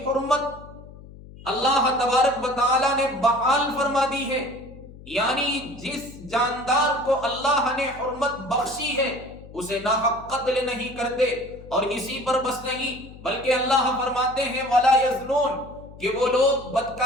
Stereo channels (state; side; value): noise; left; hum, 18 dB below the sound